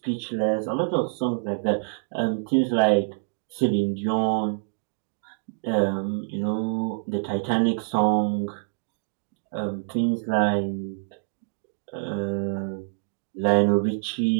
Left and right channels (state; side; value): silent; left; digital silence